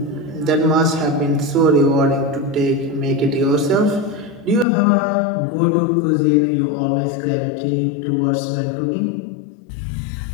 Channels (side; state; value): right; drops out; at 4.7 s